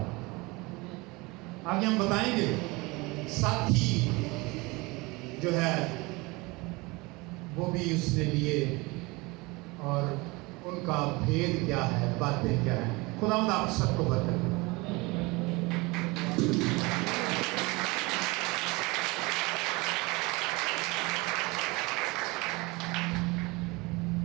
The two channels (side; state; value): left; quieter; 24.6 dB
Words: आगे हम बताएंगे साथी जो है वो भी उसने लिए और उनका भेद क्या है, बातें क्या है। खुदावंद आप सबको बरकत दे।